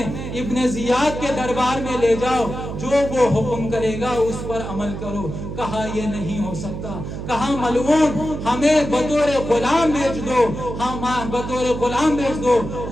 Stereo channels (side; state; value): right; noise; hum, 7 dB below the sound